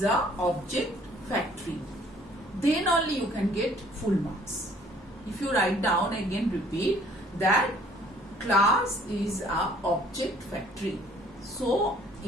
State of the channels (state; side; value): normal; both; correlation 0.58